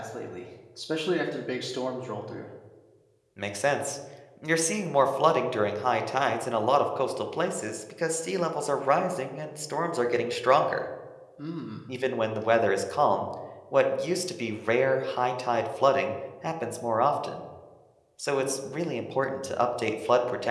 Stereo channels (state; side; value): identical; both; correlation 1.00